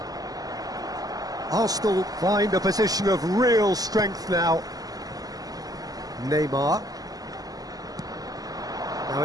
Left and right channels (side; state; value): left; late; 0.18 ms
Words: Arsenal find a position of real strength now. Neymar. Now